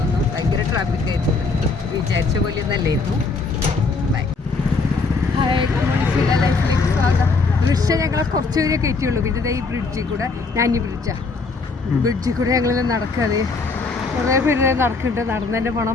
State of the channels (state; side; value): quieter; right; 4.1 dB